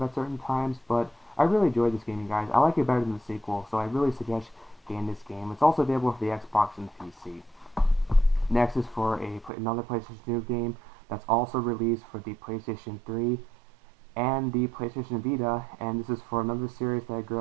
at certain times, but I really enjoyed this game, you guys. I like it better than the sequel, so I really suggest getting this game. It's also available for the Xbox and the PC. Next is for another PlayStation 2 game that's also released for the PlayStation 3 and the PlayStation Vita, and this is for another series that I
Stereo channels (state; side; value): drops out; left; at 9.5 s